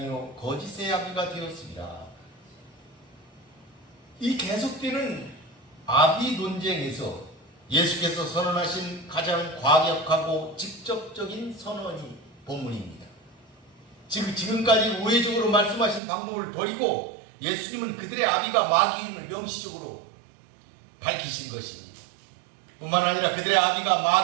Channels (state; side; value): drops out; left; at 16.0 s